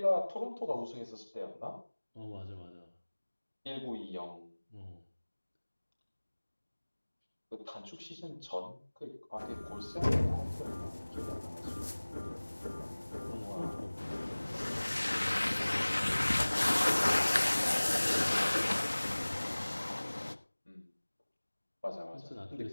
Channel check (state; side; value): inverted; both; correlation -1.00